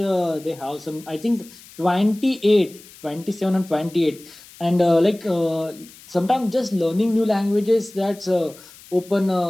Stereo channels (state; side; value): noise; left; hiss, 21 dB below the sound